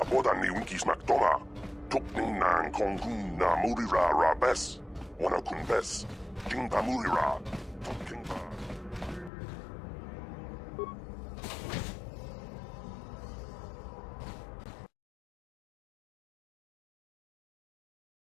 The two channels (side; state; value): right; drops out; at 9.3 s